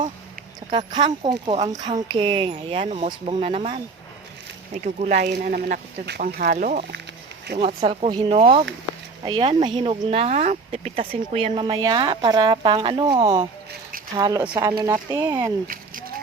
Saka kangkong ko, ang kangking. Ayan, umusbong na naman. May gugulayin na naman ako dito panghalo. Yung atsal ko hinog. Ayan, mahinog na. Pipitasin ko yan mamaya para pang ano, halo sa ano natin.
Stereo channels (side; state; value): left; quieter; 4.3 dB